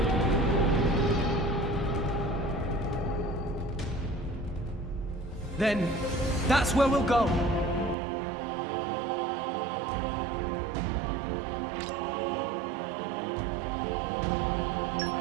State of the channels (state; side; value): drops out; left; at 8.0 s